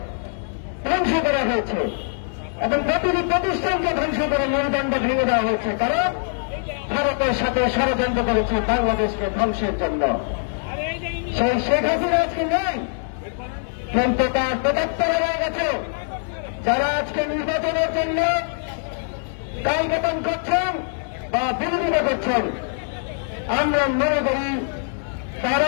ধ্বংস করা হয়েছে এবং প্রতিটি প্রতিষ্ঠানকে ধ্বংস করে মেরুদণ্ড ভেঙে দেওয়া হয়েছে, কারণ ভারতের সাথে ষড়যন্ত্র করেছে বাংলাদেশকে ধ্বংসের জন্য। সেই শেখ হাসিনা আজকে নেই, কিন্তু তার প্রদত্তরা হয়ে গেছে। যারা আজকে নির্বাচনের জন্য কালবেতন করছেন বা বিরোধিতা করছেন, আমরা মনে করি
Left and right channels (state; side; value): silent; right; 63 dB below the other